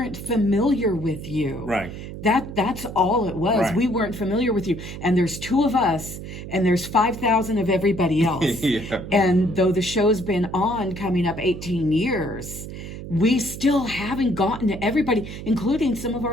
familiar with you. right. That's all it was. Right. We weren't familiar with you. And there's 2 of us, and there's 5,000 of everybody else. Yeah. And though the show's been on coming up 18 years, we still haven't gotten to everybody, including some of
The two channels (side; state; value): right; noise; hum, 10 dB below the sound